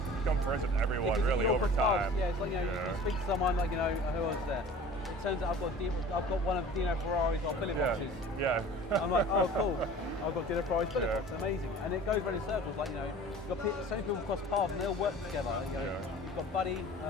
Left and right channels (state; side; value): normal; both; correlation 0.43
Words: become friends with everyone really over time. Yeah, it's like you speak to someone like who was there. It turns out I've got one of Dino Ferrari's billet boxes. Yeah. I'm like, oh cool. I've got Dino Ferrari's billet box. Amazing. And it goes around in circles. Like you've got so many people cross paths and they all work together. You've got